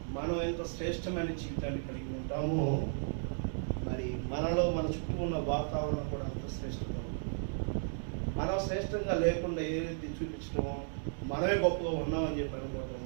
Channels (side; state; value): left; silent; digital silence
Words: మనం ఎంత శ్రేష్టమైన జీవితాన్ని కలిగి ఉంటామో మరి మనలో మన చుట్టూ ఉన్న వాతావరణం కూడా అంత శ్రేష్టంగా ఉంటుంది. మనం శ్రేష్టంగా లేకుండా ఏదైతే చూపించడమో, మనమే గొప్పగా ఉన్నామని చెప్పి